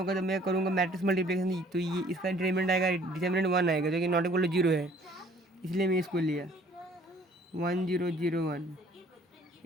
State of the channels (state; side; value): normal; both; correlation 0.56